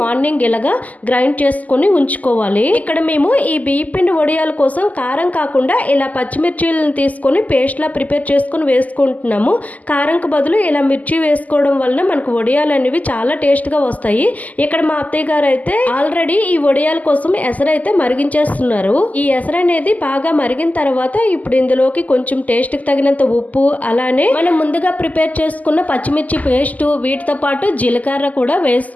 మార్నింగ్ ఇలాగా గ్రైండ్ చేసుకొని ఉంచుకోవాలి. ఇక్కడ మేము ఈ బియ్యం పిండి వడియాల కోసం కారం కాకుండా ఇలా పచ్చిమిర్చీలను తీసుకొని పేస్ట్ లా ప్రిపేర్ చేసుకొని వేసుకుంటున్నాము. కారంకు బదులు ఇలా మిర్చి వేసుకోవడం వల్ల మనకు వడియాలు అనేవి చాలా టేస్ట్ గా వస్తాయి. ఇక్కడ మా అత్తయ్య గారు అయితే ఆల్రెడీ ఈ వడియాల కోసం ఎసరు అయితే మరిగించేస్తున్నారు. ఈ ఎసరు అనేది బాగా మరిగిన తర్వాత ఇప్పుడు ఇందులోకి కొంచెం టేస్ట్ కి తగినంత ఉప్పు, అలానే మనం ముందుగా ప్రిపేర్ చేసుకున్న పచ్చిమిర్చి పేస్ట్, వీటితో పాటు జీలకర్ర కూడా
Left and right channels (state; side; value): late; right; 0.077 ms